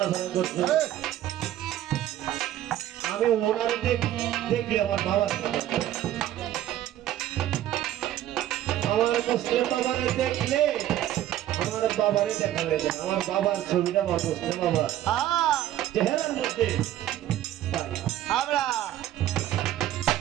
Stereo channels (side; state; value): left; quieter; 12.8 dB